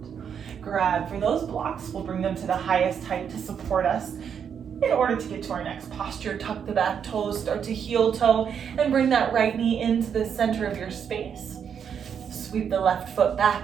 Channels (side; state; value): left; quieter; 7.6 dB